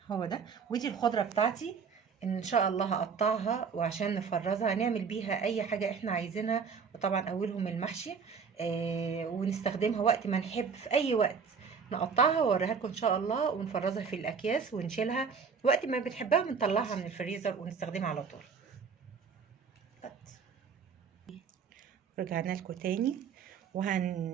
هو ده. ودي الخضره بتاعتي ان شاء الله هقطعها، وعشان نفرزها نعمل بيها اي حاجه احنا عايزينها. وطبعا اولهم المحشي، ونستخدمها وقت ما نحب، في اي وقت نقطعها واوريها لكم ان شاء الله، ونفرزها في الاكياس ونشيلها وقت ما بنحبها، بنطلعها من الفريزر ونستخدمها على طول. رجعنا لكم تاني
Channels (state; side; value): quieter; left; 6.0 dB